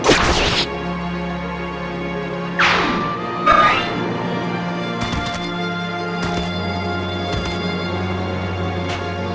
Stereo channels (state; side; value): identical; both; correlation 1.00